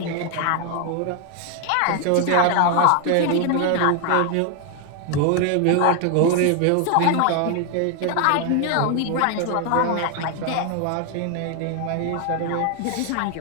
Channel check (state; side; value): different; both; correlation 0.00